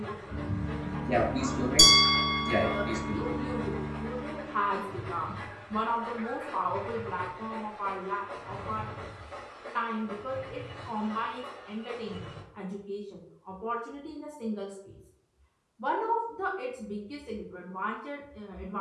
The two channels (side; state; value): both; identical; correlation 1.00